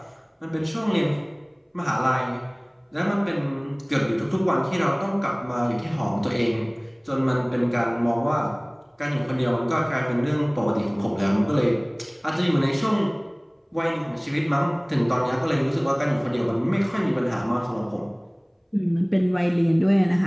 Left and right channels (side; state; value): both; identical; correlation 1.00